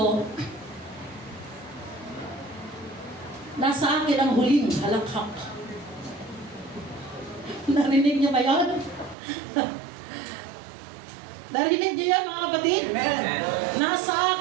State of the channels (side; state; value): left; drops out; at 9.2 s